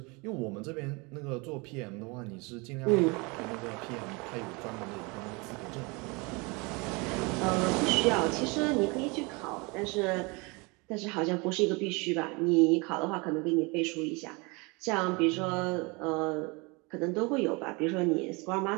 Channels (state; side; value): quieter; left; 27.9 dB